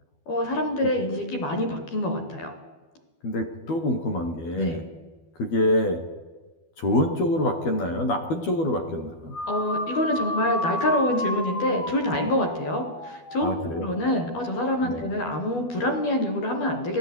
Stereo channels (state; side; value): late; right; 12 ms